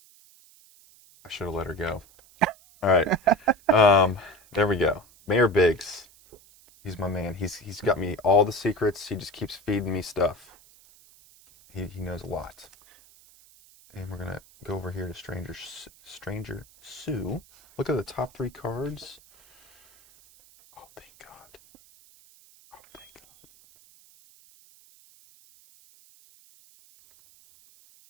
should have let her go. All right. There we go. Mayor Biggs. He's my man. He's got me all the secrets. He just keeps feeding me stuff. He knows a lot. And we're gonna go over here to Stranger Sue. Look at the top 3 cards. Oh, thank God. Oh, thank God.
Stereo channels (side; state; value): right; noise; hiss, 26 dB below the sound